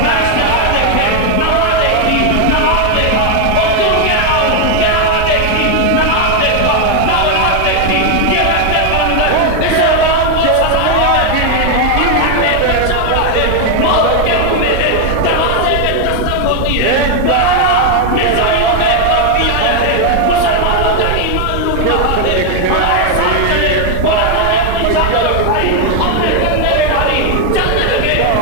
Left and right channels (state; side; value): different; both; correlation 0.01